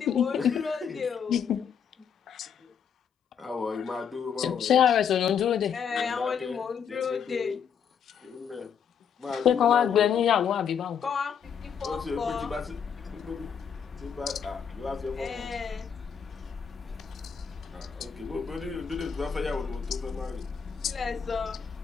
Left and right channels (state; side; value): quieter; right; 7.4 dB